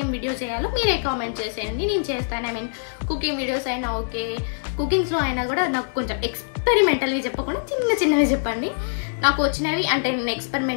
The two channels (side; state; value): right; silent; digital silence